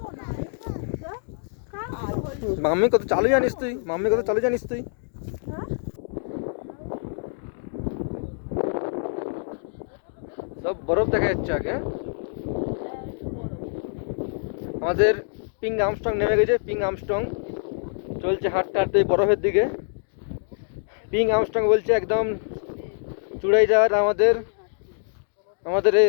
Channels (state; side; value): silent; right; digital silence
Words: মাম্মি কত চালু জানিস তুই, মাম্মি কত চালু জানিস তুই। সব বরফ দেখা যাচ্ছে আগে। আমাদের পিং আর্মস্ট্রং নেমে গেছে। পিং আর্মস্ট্রং চলছে হাঁটতে হাঁটতে বরফের দিকে। পিং আর্মস্ট্রং বলছে একদম চূড়াই যাওয়ার আমাদের আমাদের